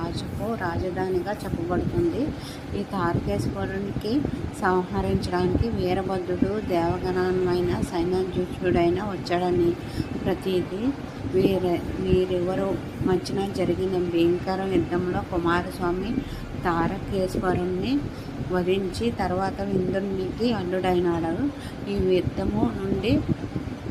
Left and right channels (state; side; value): identical; both; correlation 1.00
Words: రాజధానిగా చెప్పబడుతుంది. ఈ తారకేశ్వరునికి సంహరించడానికి వీరభద్రుడు దేవగణమైన సైన్యాధ్యక్షుడైన వచ్చాడని ప్రతీది. వీరివరు మధ్యన జరిగిన భయంకర యుద్ధంలో కుమారస్వామి తారకేశ్వరుణ్ణి వధించి తర్వాత ఇంద్రునికి అల్లుడైనాడు. ఈ యుద్ధము నుండి